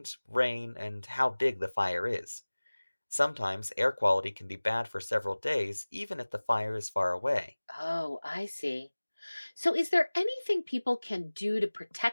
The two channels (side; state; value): both; inverted; correlation -1.00